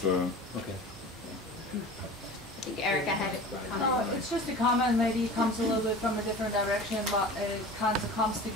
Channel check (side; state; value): both; normal; correlation 0.37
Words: a... Okay. I think Erica had a comment. It's just a comment, maybe it comes a little bit from a different direction, but it kind of comes